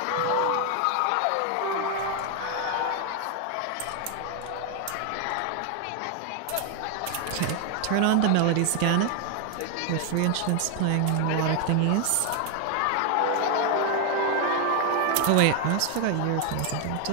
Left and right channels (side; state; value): both; different; correlation 0.00